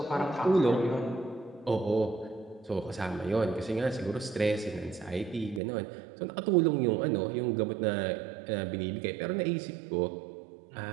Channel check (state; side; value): drops out; left; at 5.6 s